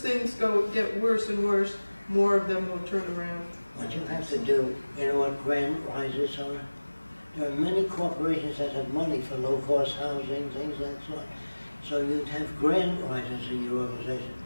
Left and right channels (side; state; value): both; inverted; correlation -1.00